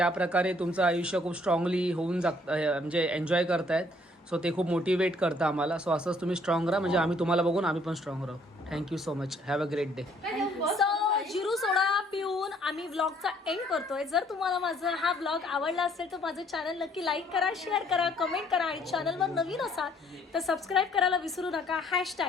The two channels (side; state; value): both; normal; correlation 0.63